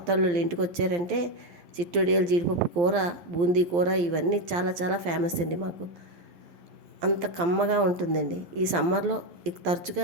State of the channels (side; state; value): left; late; 12 ms